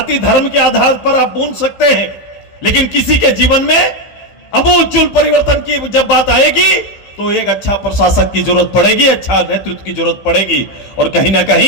धर्म के आधार पर आप बूंद सकते हैं, लेकिन किसी के जीवन में अमूलचूल परिवर्तन की जब बात आएगी तो एक अच्छा प्रशासक की जरूरत पड़ेगी, अच्छा नेतृत्व की जरूरत पड़ेगी, और कहीं ना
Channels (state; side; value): late; right; 15 ms